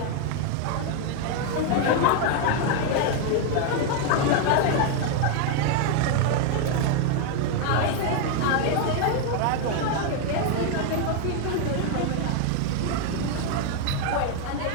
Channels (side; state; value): both; different; correlation 0.01